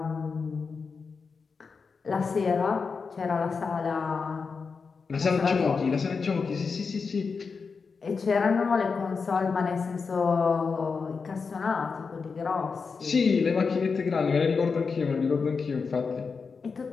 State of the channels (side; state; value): right; quieter; 5.1 dB